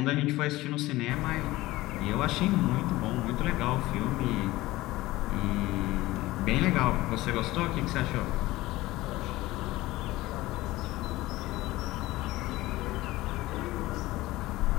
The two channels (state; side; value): quieter; right; 18.2 dB